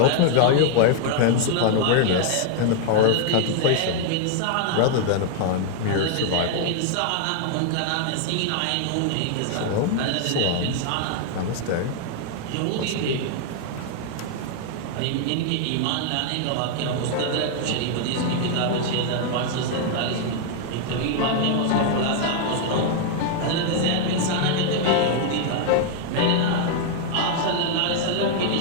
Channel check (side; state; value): both; different; correlation 0.00